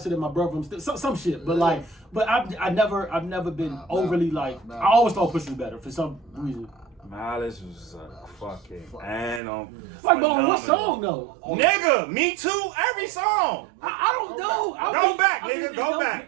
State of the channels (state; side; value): drops out; left; at 9.4 s